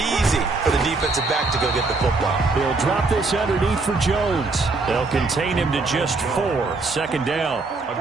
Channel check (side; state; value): left; quieter; 3.7 dB